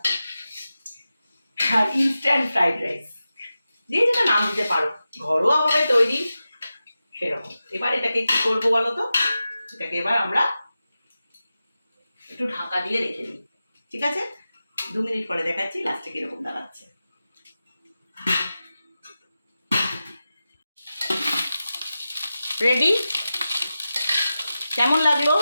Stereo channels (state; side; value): inverted; both; correlation -0.93